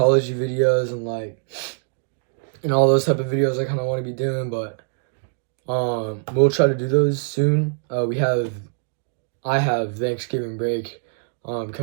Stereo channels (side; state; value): left; silent; digital silence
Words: and like all those type of videos I kind of want to be doing, but we'll try to do those soon. I have Thanksgiving break